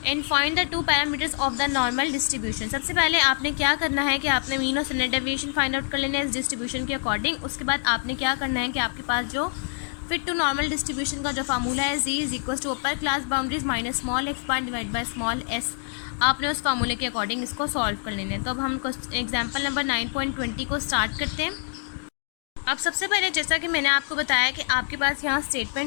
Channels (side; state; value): right; silent; 60 dB below the other